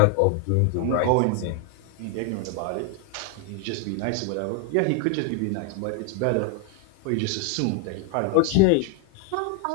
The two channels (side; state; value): both; different; correlation 0.00